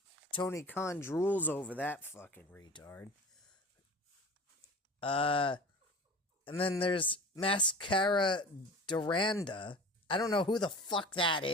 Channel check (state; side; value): normal; both; correlation 0.37